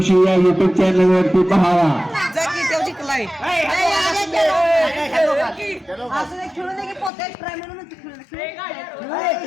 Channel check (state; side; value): drops out; right; at 7.1 s